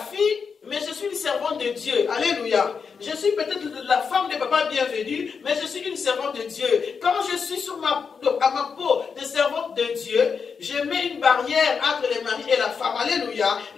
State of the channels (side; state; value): right; quieter; 5.8 dB